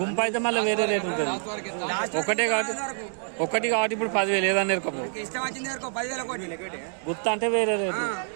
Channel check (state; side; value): silent; left; digital silence